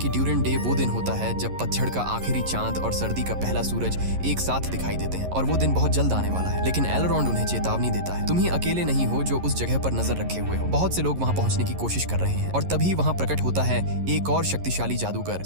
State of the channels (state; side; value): late; left; 11 ms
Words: ड्यूरिन डे वो दिन होता है जब पतझड़ का आखिरी चांद और सर्दी का पहला सूरज एक साथ दिखाई देते हैं और वो दिन बहुत जल्द आने वाला है। लेकिन एलरॉन्ड उन्हें चेतावनी देता है, तुम ही अकेले नहीं हो जो उस जगह पर नजर रखे हुए हो, बहुत से लोग वहाँ पहुंचने की कोशिश कर रहे हैं। और तभी वहाँ प्रकट होता है एक और शक्तिशाली जादूगर